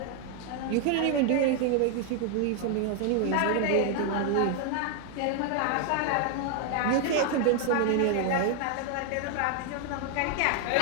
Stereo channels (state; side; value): different; both; correlation 0.00